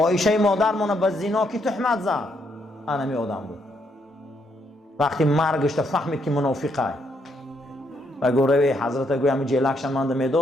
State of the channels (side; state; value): both; normal; correlation 0.75